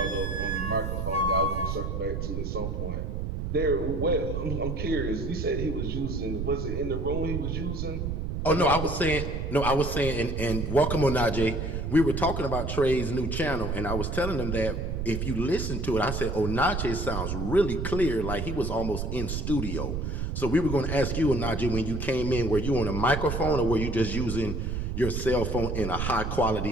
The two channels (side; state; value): right; noise; rumble, 3 dB below the sound